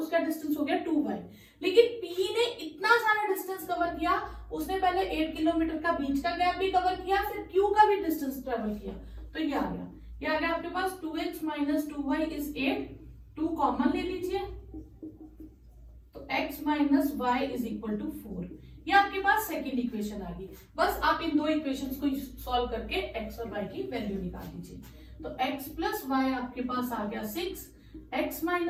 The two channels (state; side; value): identical; both; correlation 1.00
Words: डिस्टेंस हो गया 2y। लेकिन P ने इतना सारा डिस्टेंस कवर किया, उसने पहले 8 किलोमीटर का बीच का गैप भी कवर किया, फिर Q का भी डिस्टेंस ट्रेवल किया, तो ये आ गया आपके पास 2x minus 2y is 8, 2 common ले लीजिए, तो x minus Y is equal to 4। ये आपके पास सेकेंड इक्वेशन आ गई। बस आप इन दो इक्वेशंस को सॉल्व करके x और y की वैल्यू निकाल दीजिए। तो x प्लस वाई आपके पास आ गया 6, x